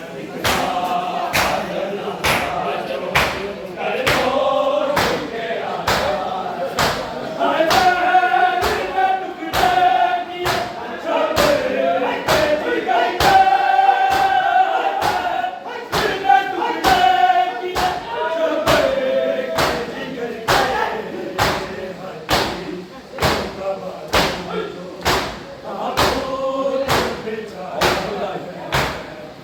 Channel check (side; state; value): both; identical; correlation 1.00